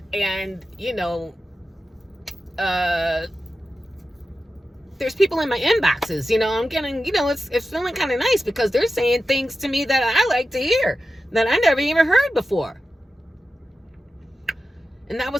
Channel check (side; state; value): both; normal; correlation 0.92